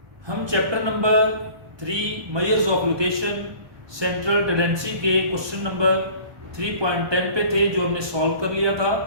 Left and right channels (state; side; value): late; left; 1.2 ms